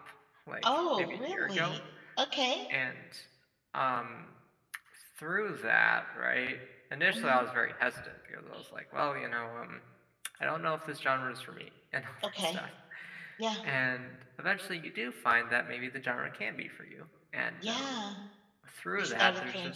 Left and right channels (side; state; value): both; identical; correlation 1.00